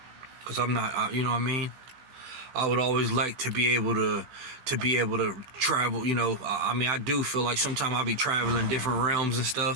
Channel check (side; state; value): left; late; 16 ms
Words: Because I'm not, you know what I mean? I would always like to be able to travel, you know. I mean, I do feel like sometimes I'll be traveling different realms and